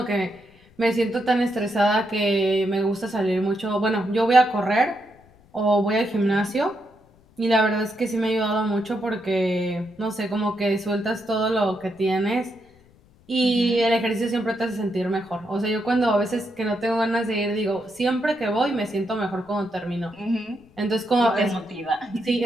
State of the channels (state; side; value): noise; left; rumble, 29 dB below the sound